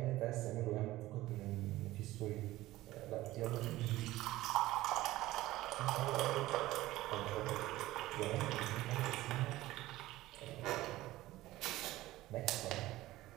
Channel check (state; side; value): quieter; left; 16.8 dB